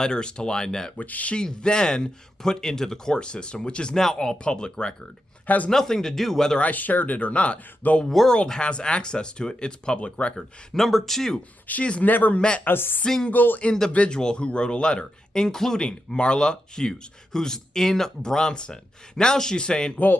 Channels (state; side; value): normal; both; correlation 0.87